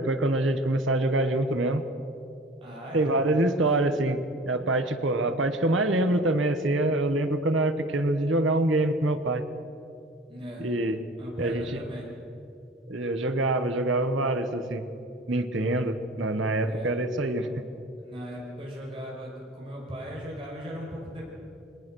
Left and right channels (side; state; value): both; normal; correlation 0.42